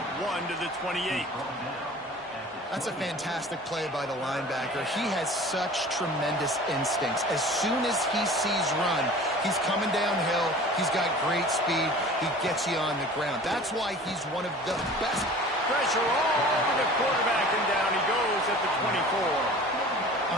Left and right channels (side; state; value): both; normal; correlation 0.43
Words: one to the 28. That's a fantastic play by the linebacker. He has such tremendous instincts. As soon as he sees run, he's coming downhill. He's got great speed. He gets you on the ground. That's why he's one of the best. Pressure all over the quarterback, and down he goes at the 24.